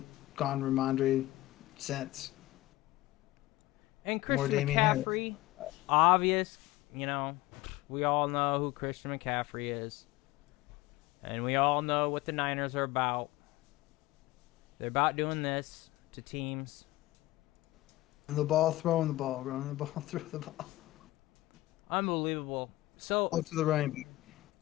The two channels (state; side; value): quieter; right; 17.9 dB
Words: gone Ramondre since. And Christian McCaffrey, obvious, we all know who Christian McCaffrey is. And we all know what the Niners are about. They're about doing this to teams. The ball, throwing the ball, running the ball, throw the ball. Unbelievable. So, to the right.